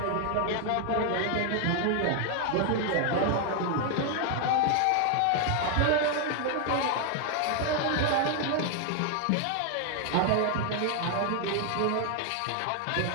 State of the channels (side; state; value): both; different; correlation 0.00